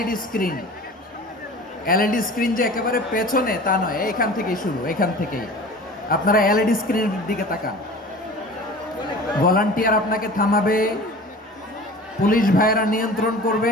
স্ক্রিন, যে একেবারে পেছনে তা নয়, এইখান থেকেই শুরু, এখান থেকেই আপনারা এলইডি স্ক্রিনের দিকে তাকান। ভলান্টিয়ার আপনাকে থামাবে, পুলিশ ভাইয়েরা নিয়ন্ত্রণ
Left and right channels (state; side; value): normal; both; correlation 0.40